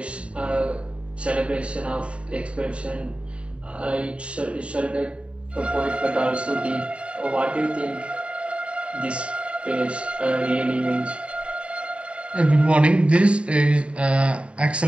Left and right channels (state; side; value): late; left; 0.060 ms